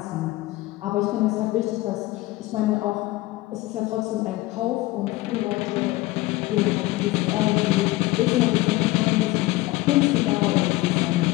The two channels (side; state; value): right; quieter; 18.9 dB